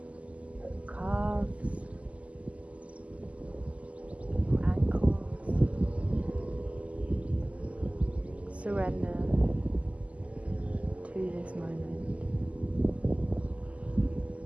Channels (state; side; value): late; left; 0.066 ms